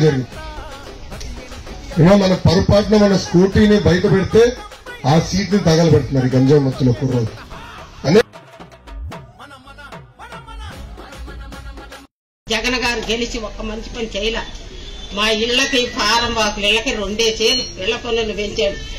జరిగింది. ఏమో మన పొరపాటున మన స్కూటీని బయట పెడితే ఆ సీట్ ని తగలబెడుతున్నారు ఈ గంజాయి ముత్తులో కుర్రోజు అనే. జగన్ గారు గెలిచి ఒక్క మంచి పని చేయలే. మా ఇళ్లకి ఫారం వాకులు ఇళ్లకి 2 ఇళ్ల పన్నులు పెంచాడు,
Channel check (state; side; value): identical; both; correlation 1.00